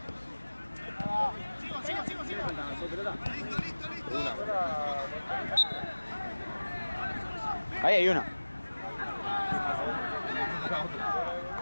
Ahí hay una.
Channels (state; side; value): inverted; both; correlation -1.00